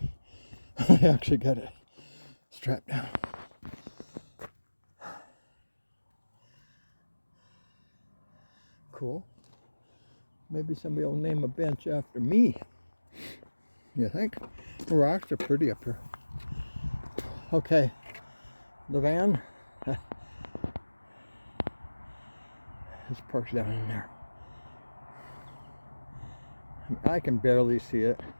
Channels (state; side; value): inverted; both; correlation -1.00